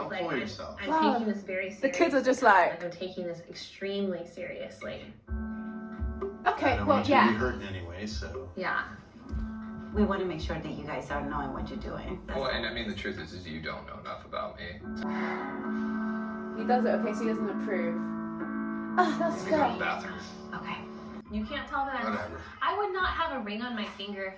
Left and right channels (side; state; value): both; identical; correlation 1.00